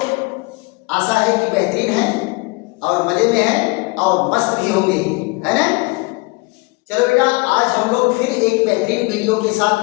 आशा है कि बेहतरीन हैं और मजे में हैं और मस्त भी होंगे, है ना? चलो बेटा, आज हम लोग फिर एक बेहतरीन वीडियो के साथ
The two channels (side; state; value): right; quieter; 27.0 dB